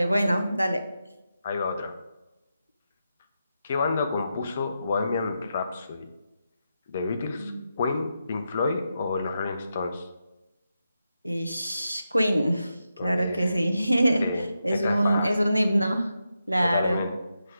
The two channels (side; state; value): both; inverted; correlation -0.87